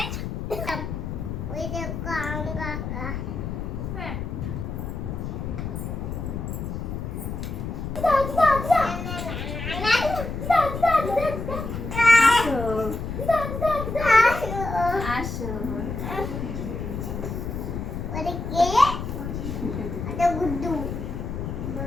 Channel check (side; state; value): left; noise; rumble, 5 dB below the sound